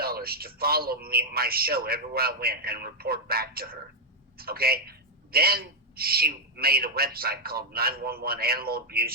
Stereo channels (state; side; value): normal; both; correlation 0.00